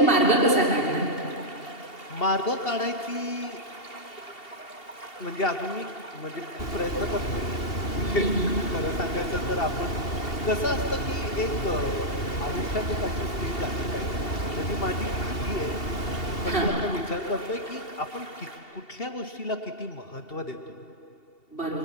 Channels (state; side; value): late; right; 2.7 ms